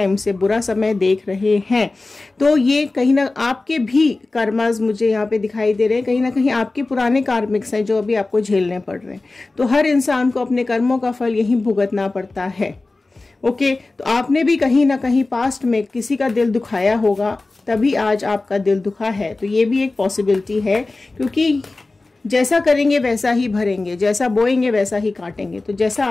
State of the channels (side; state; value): right; quieter; 3.3 dB